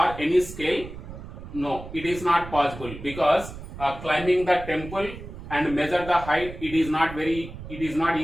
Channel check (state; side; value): noise; right; rumble, 12 dB below the sound